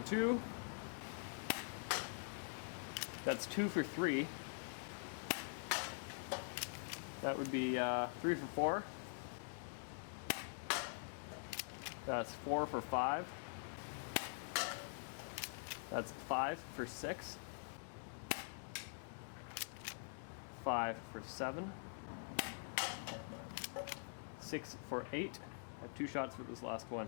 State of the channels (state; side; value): silent; right; digital silence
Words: 2. That's 2 for 3. That would be 3 for 4. That's 4 for 5. That's 5 for 6. 5 for 7, 6 for 8. I have 2 shots for this last one.